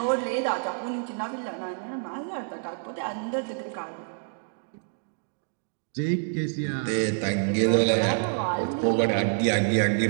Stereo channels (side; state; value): left; silent; digital silence